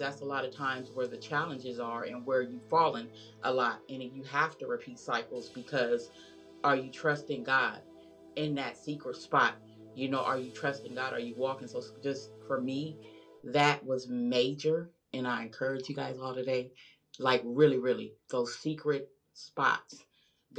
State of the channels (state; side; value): identical; both; correlation 1.00